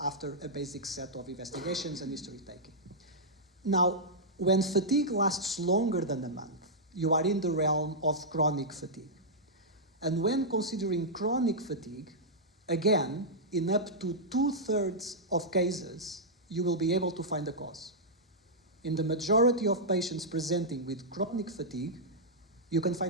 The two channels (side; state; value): both; normal; correlation -0.09